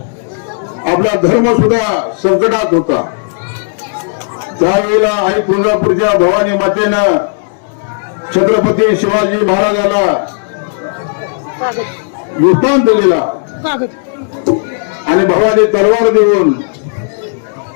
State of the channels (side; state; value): right; silent; digital silence